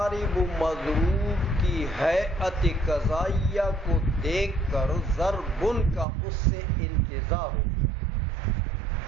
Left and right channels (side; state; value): left; drops out; at 6.1 s